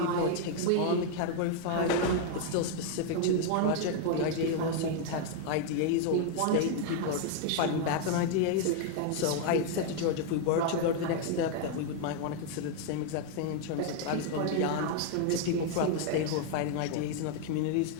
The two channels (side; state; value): both; different; correlation 0.00